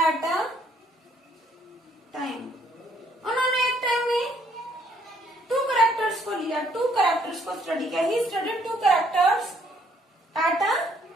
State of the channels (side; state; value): both; normal; correlation 0.67